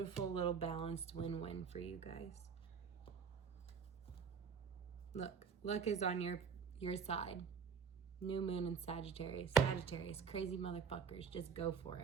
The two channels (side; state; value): left; quieter; 6.3 dB